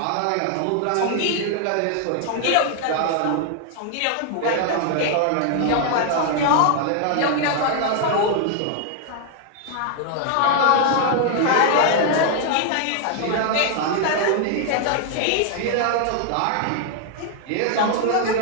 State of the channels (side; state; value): both; different; correlation 0.00